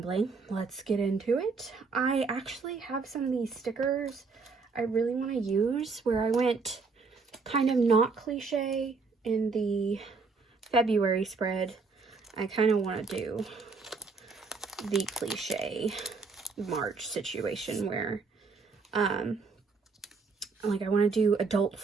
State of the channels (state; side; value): quieter; left; 4.5 dB